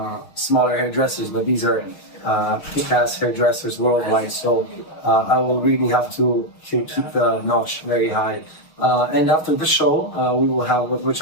smaller hairdressers, but these are kick-ass hairdressers worldwide. So I will really have to keep the notch very high. And after the show, we will have, which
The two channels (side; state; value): right; late; 6.4 ms